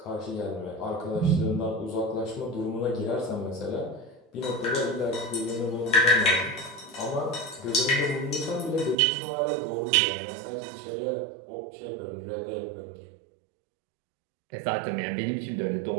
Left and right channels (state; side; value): drops out; left; at 9.0 s